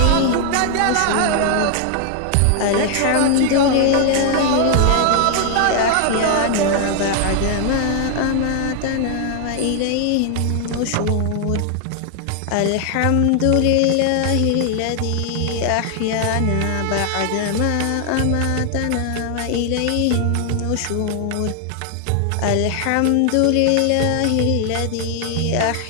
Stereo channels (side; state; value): both; different; correlation 0.00